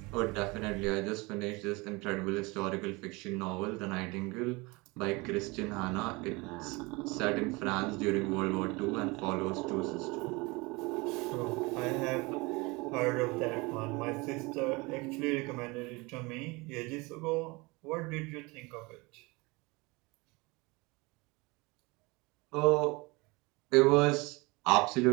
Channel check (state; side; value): quieter; left; 25.3 dB